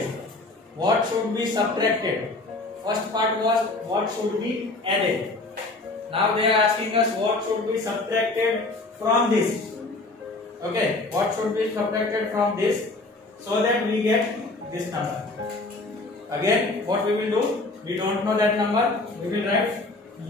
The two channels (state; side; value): quieter; right; 3.1 dB